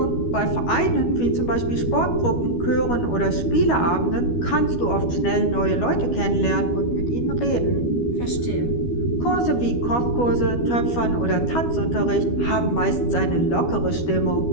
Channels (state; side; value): late; right; 12 ms